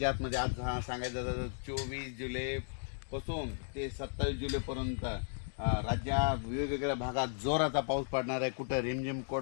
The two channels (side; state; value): right; silent; digital silence